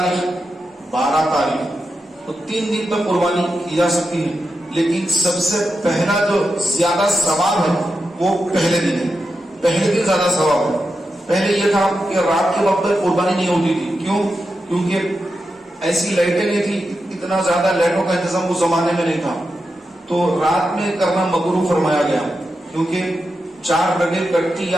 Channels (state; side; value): normal; both; correlation 0.89